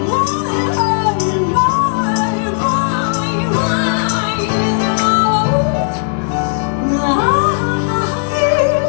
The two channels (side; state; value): right; silent; digital silence